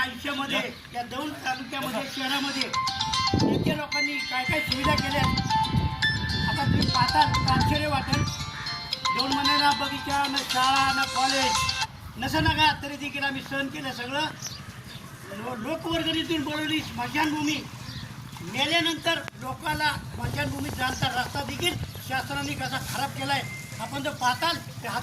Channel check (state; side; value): identical; both; correlation 1.00